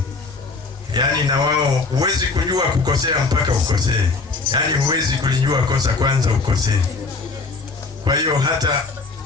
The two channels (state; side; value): quieter; right; 4.0 dB